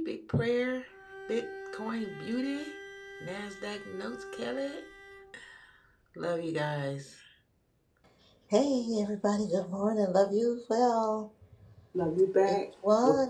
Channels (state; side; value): identical; both; correlation 1.00